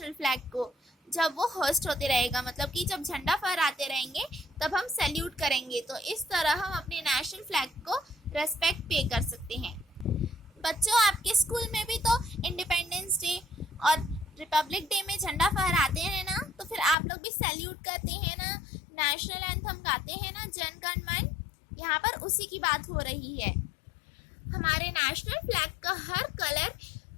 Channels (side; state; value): right; drops out; at 16.9 s